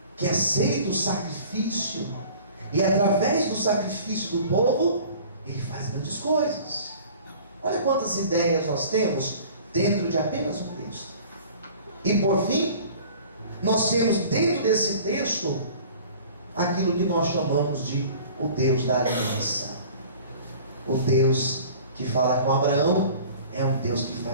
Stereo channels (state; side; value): inverted; both; correlation -0.46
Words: que aceita o sacrifício, e através do sacrifício do povo ele faz grandes coisas. Olha quantas ideias nós temos dentro de apenas um texto. E por fim, nós temos dentro desse texto aquilo que nós chamamos de o Deus da aliança. O Deus que fala com Abraão é um Deus que